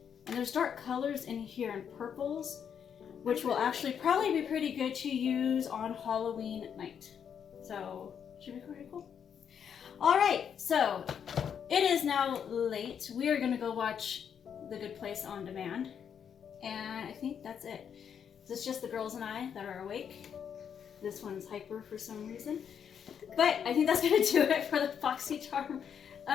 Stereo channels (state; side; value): quieter; right; 7.9 dB